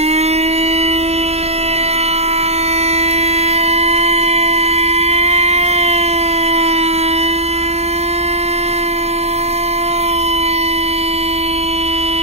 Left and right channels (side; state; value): left; late; 0.31 ms